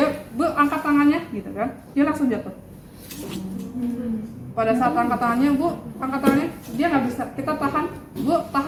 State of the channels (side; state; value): both; identical; correlation 1.00